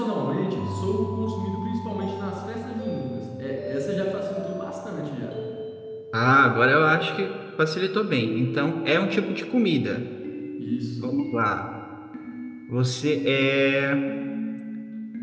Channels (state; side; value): identical; both; correlation 1.00